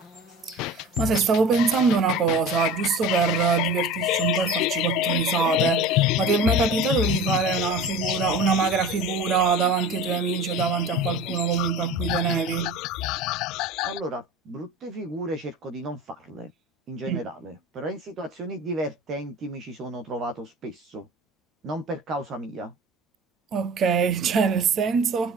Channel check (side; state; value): both; normal; correlation 0.37